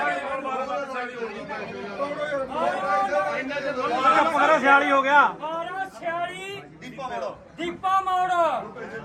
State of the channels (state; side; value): identical; both; correlation 1.00